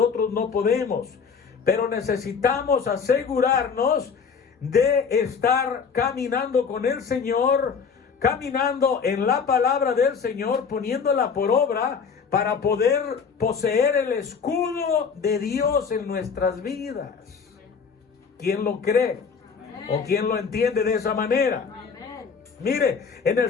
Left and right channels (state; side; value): quieter; right; 5.9 dB